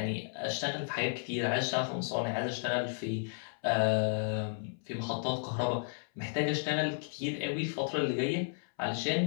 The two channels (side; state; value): right; silent; 56 dB below the other